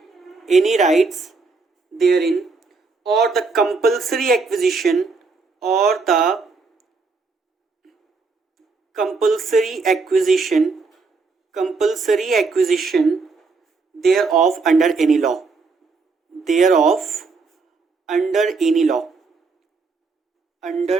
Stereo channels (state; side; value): quieter; left; 4.3 dB